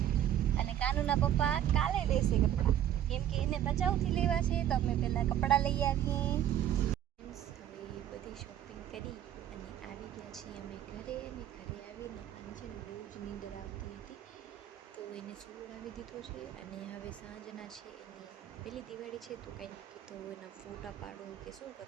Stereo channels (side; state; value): left; quieter; 11.1 dB